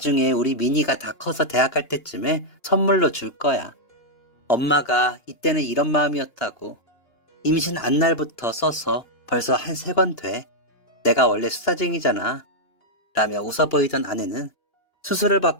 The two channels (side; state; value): right; late; 2.9 ms